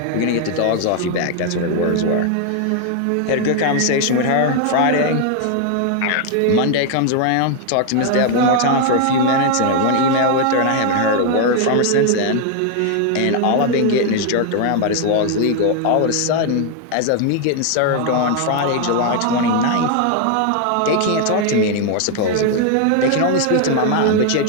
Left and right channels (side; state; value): both; different; correlation 0.00